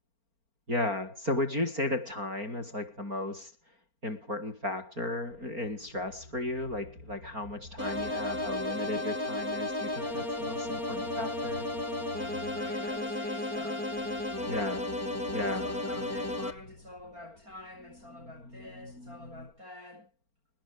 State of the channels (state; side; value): late; left; 4.4 ms